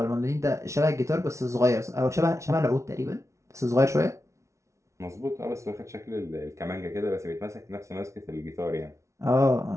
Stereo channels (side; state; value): left; late; 0.14 ms